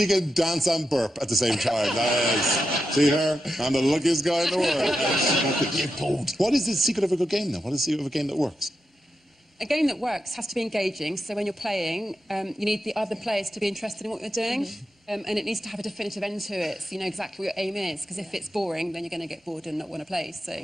can dance and burp at the same time, nice. See her? I'm the luckiest guy in the world. What is the secret of a good game, then? What is the secret of a game that works? A game that works has to be engaging, so when you're playing, you need the other players to be interested in what you're doing, and it needs to have a definitive end to it, so you know exactly what your aim is, because if it's boring, then you're going to get bored and not want to play. So,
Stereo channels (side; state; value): both; normal; correlation 0.88